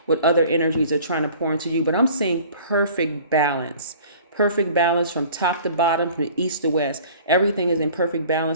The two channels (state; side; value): inverted; both; correlation -0.48